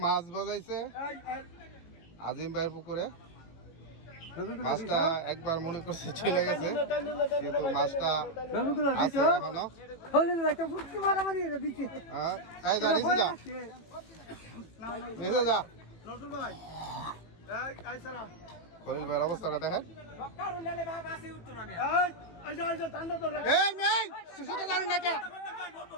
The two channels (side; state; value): right; late; 18 ms